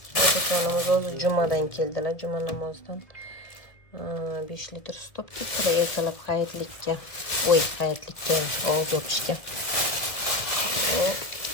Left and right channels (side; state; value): right; late; 1.5 ms